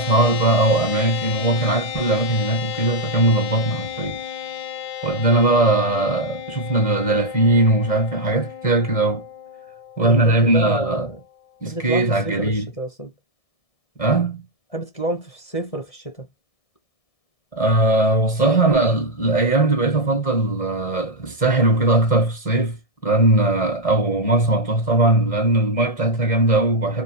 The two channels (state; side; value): late; right; 1.6 ms